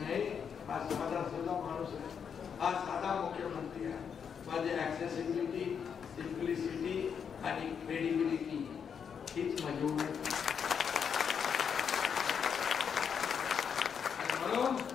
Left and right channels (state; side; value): quieter; right; 7.1 dB